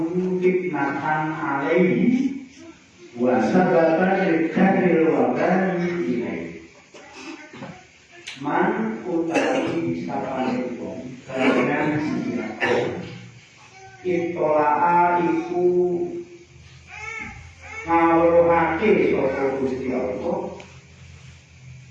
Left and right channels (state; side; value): identical; both; correlation 1.00